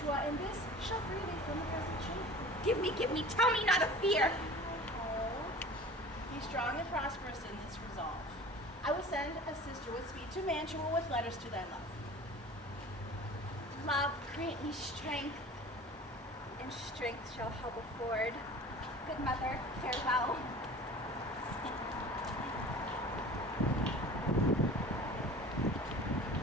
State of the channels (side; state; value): both; normal; correlation 0.41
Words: and this shall free thee from the present shame. Give me, tell me not of fear. Hold. Be strong and prosperous in this resolve. I will send a sister with speed to Mantua with letters to thy love. Love, grant me strength, and strength shall help afford. Good mother, farewell.